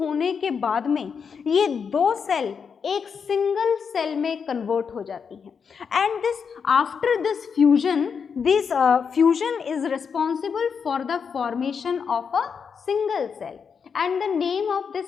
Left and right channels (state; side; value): quieter; right; 6.3 dB